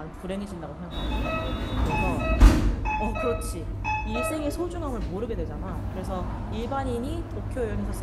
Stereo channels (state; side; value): identical; both; correlation 1.00